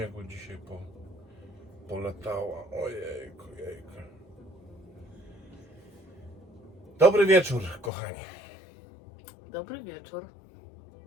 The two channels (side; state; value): right; drops out; at 7.9 s